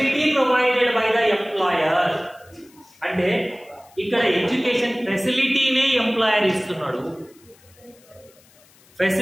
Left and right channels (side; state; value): left; noise; hiss, 28 dB below the sound